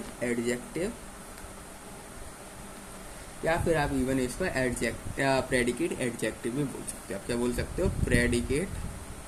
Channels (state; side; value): identical; both; correlation 1.00